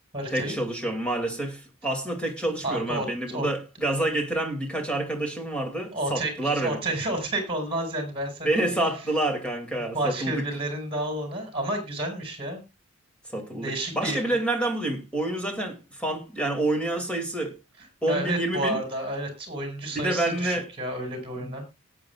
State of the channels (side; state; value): both; normal; correlation 0.47